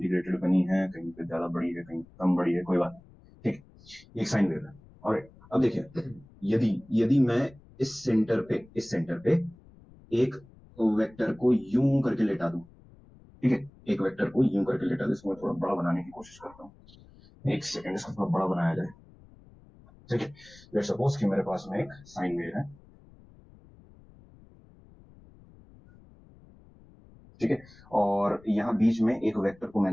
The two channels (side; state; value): left; noise; rumble, 24 dB below the sound